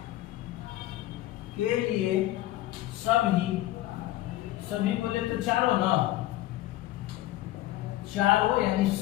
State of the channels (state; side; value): quieter; right; 15.7 dB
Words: सभी बोले तो चारों ना, चारों यानी